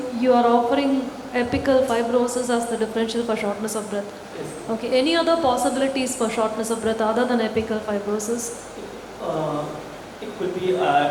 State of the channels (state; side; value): identical; both; correlation 1.00